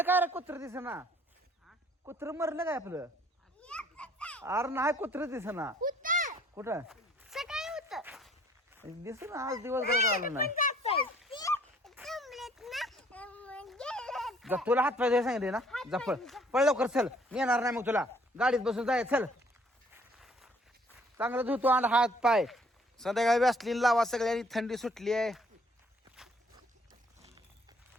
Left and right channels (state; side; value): normal; both; correlation 0.60